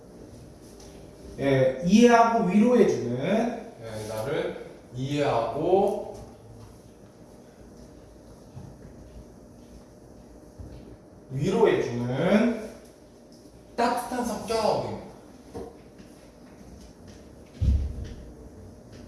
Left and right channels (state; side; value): identical; both; correlation 1.00